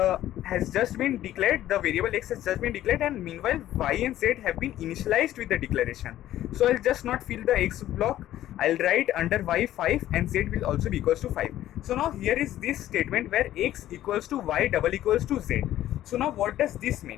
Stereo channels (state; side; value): quieter; right; 13.2 dB